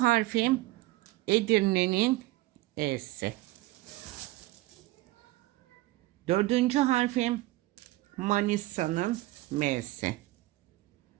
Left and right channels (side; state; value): left; quieter; 18.7 dB